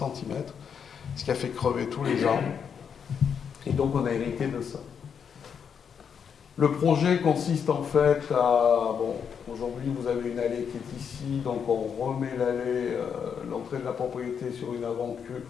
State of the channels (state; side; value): quieter; right; 7.1 dB